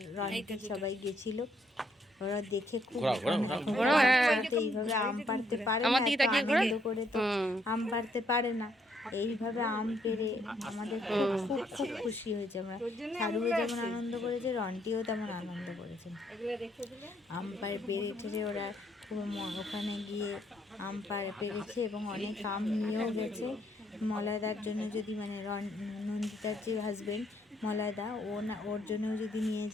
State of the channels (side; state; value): both; normal; correlation 0.71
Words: রন্টি সবাই গেছিল। ওরা দেখে খুব ঘোরাও, এইভাবে আম পাড়তে পারে আমার না, দিকে এত তাকিয়ে ঘোরা। আনন্দ করে তো আম পাড়তে পারে না। এইভাবে আম পেড়ে আমাদের খুব খুব খুব খুশি হয়েছে আমরা। সারুও যেমন আনন্দ করেছে, রন্টিও তেমন আনন্দ করেছে। আম পেড়ে ওরা খুব ওখানে গিয়ে আম পেড়েছে এবং অনেক আম নিয়েও গেছে। মলয়দার জন্য যদি মানে নন্দিতার যে হাজবেন্ড মলয়দা, ও না ওর জন্যও যদি নিয়ে